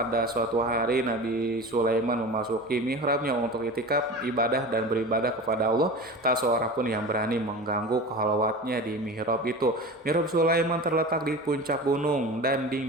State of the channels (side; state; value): both; normal; correlation 0.32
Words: suatu hari Nabi Sulaiman memasuki mihrabnya untuk itikaf, ibadah dan beribadah kepada Allah. Tak seorang pun yang berani mengganggu khalwatnya di mihrab itu. Mihrab Sulaiman terletak di puncak gunung dan